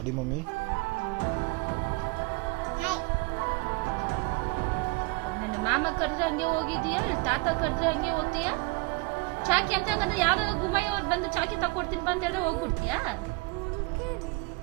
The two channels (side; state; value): left; quieter; 25.1 dB